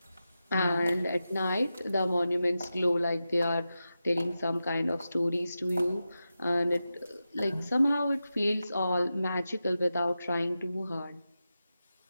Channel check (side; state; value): both; inverted; correlation -0.91